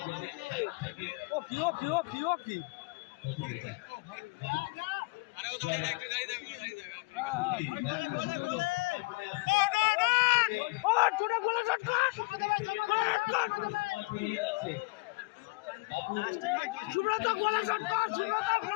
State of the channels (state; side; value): quieter; right; 25.1 dB